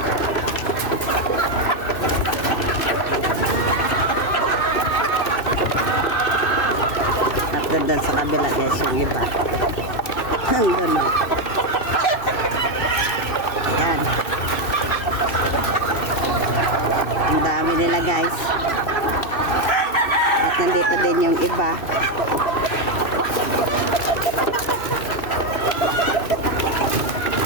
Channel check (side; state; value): right; late; 2.6 ms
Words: Doon sa kabila guys yung iba. Doon. Ayan. Ang dami nila guys. At nandito din yung iba.